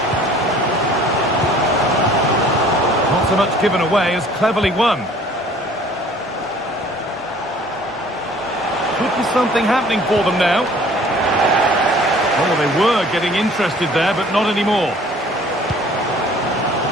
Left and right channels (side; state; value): both; normal; correlation 0.52